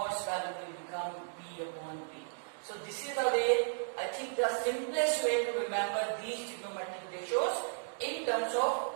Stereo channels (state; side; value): silent; left; digital silence